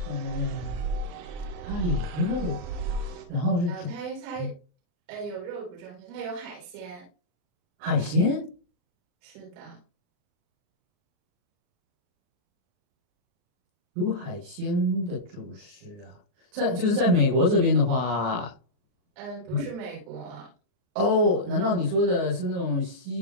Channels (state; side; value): late; left; 39 ms